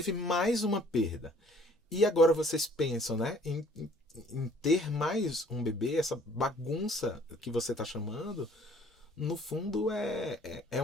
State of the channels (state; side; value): normal; both; correlation 0.57